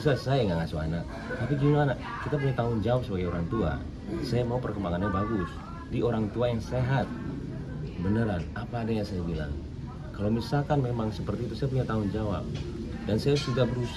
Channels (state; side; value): identical; both; correlation 1.00